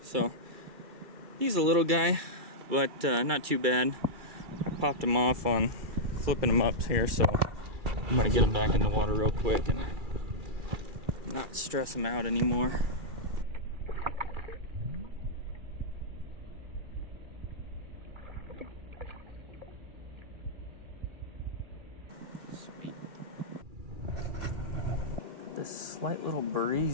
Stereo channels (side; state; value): left; late; 2.3 ms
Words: so he's a little guy, but not too bad. I popped him off on flipping him up here, so I'm gonna get him back in the water real quick and not stress him out anymore. Sweet. Got this slight little